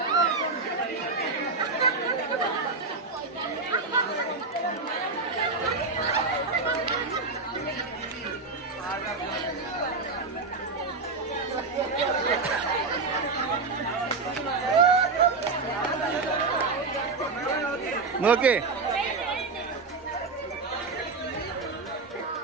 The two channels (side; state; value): left; quieter; 4.0 dB